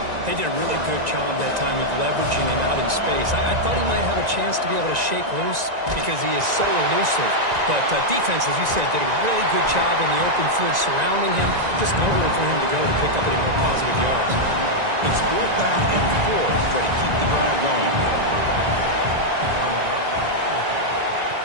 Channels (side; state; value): left; late; 1.9 ms